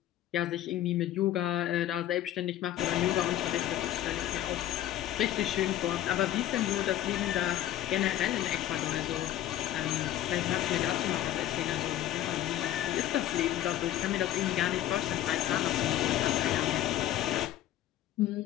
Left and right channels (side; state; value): right; quieter; 13.0 dB